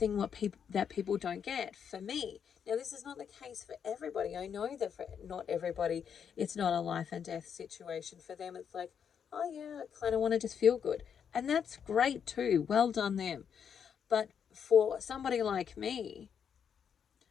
that people don't get. For me, now this is not the case for everybody. I know that for not everybody, it's not a life and death situation. For them, it's like, oh yeah, I kind of want to just feel good. And that's great too. Well done them. But for somebody like me,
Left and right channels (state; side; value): quieter; right; 7.6 dB